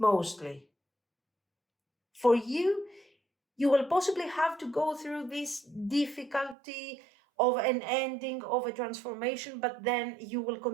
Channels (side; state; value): left; drops out; at 6.6 s